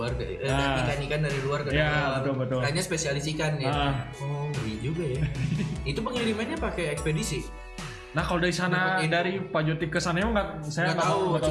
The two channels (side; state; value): both; identical; correlation 1.00